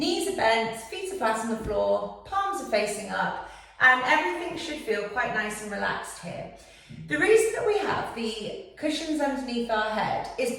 are bent, feet are flat on the floor, palms are facing up, and everything should feel quite nice and relaxed here. The reason that we have the cushions underneath our head is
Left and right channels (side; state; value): both; identical; correlation 1.00